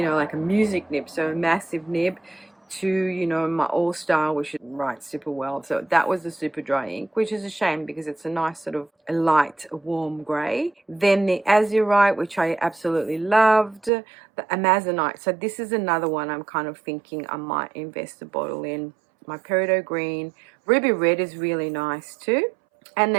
know, like a music nib, so a massive nib, to, you know, my All-Star, which writes super well. So that was the super dry ink, which is a shame because it's a nice sort of a light, warm grey. Then the Azurite, which I absolutely loved. The Amazonite. So this is another one I'm kind of thinking I might invest a bottle in. My Peridot Green. Ruby Red is really nice too. And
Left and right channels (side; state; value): left; drops out; at 13.9 s